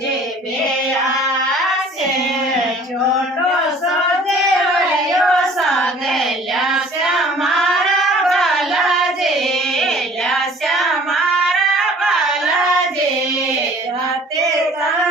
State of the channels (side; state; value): both; normal; correlation 0.51